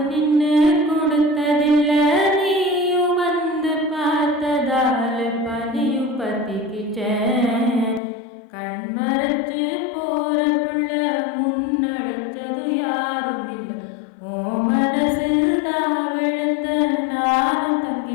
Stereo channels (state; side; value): drops out; right; at 8.0 s